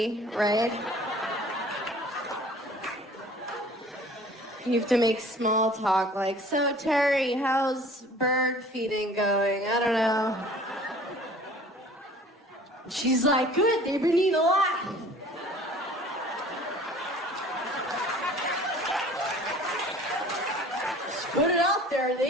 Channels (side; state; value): both; normal; correlation 0.49